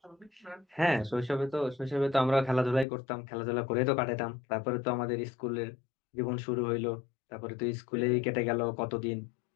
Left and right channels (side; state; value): right; drops out; at 2.9 s